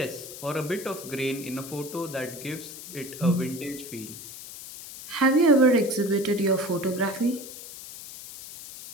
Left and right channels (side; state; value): left; noise; hiss, 13 dB below the sound